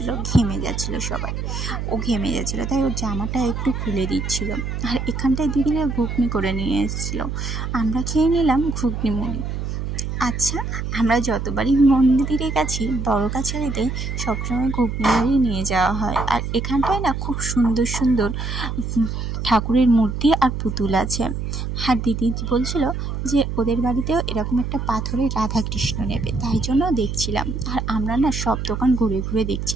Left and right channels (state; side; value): noise; right; hum, 4 dB below the sound